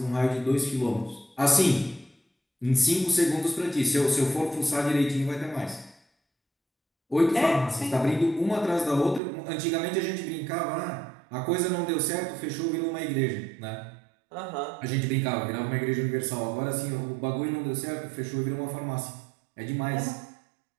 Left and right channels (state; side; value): drops out; left; at 9.2 s